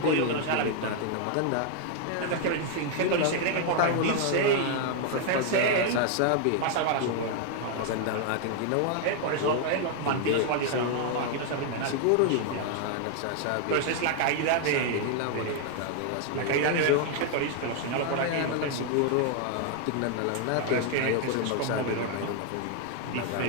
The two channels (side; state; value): both; different; correlation 0.00